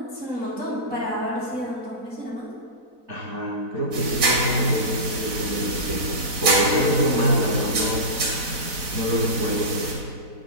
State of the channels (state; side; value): late; left; 4.0 ms